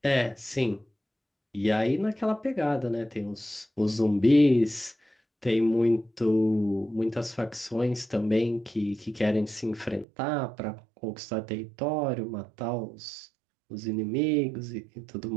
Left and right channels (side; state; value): left; drops out; at 10.1 s